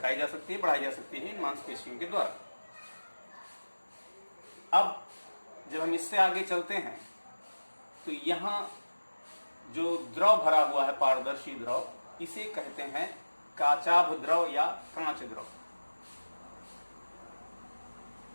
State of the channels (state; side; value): inverted; both; correlation -1.00